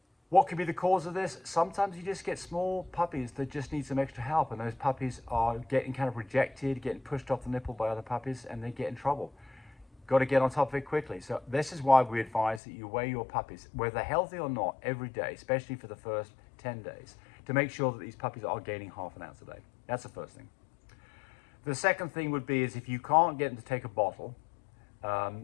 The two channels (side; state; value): right; drops out; at 12.6 s